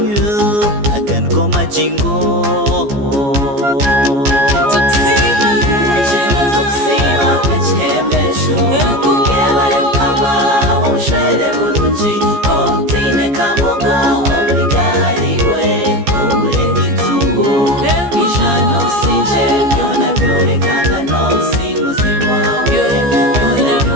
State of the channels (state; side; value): late; left; 14 ms